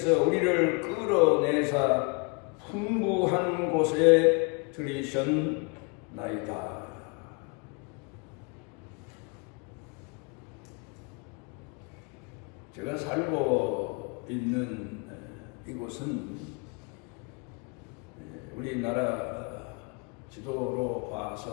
우리를 끌어내사 풍부한 곳에 들이셨나이다. 제가 살고 있는 이곳은 우리나라 지도로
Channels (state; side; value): quieter; right; 33.4 dB